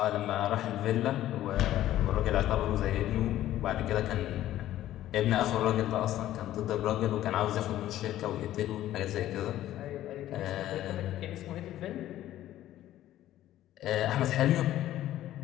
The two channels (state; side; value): quieter; right; 13.4 dB